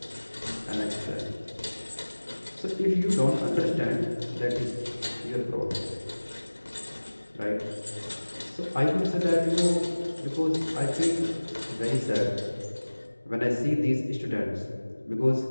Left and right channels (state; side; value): inverted; both; correlation -1.00